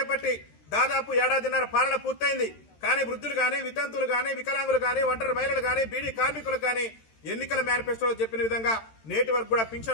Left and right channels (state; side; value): late; right; 13 ms